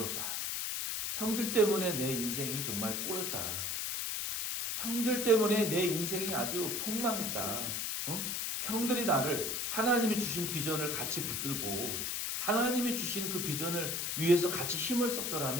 형들 때문에 내 인생이 정말 꼬였다. 형들 때문에 내 인생이 아주 폭망했다. 형들이 나를 하나님이 주신 비전을 같이 붙들고 하나님이 주신 그 비전을 위해서 같이 힘을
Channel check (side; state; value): left; noise; hiss, 1 dB below the sound